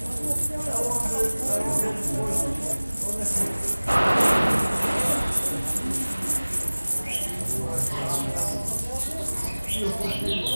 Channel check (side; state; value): both; inverted; correlation -1.00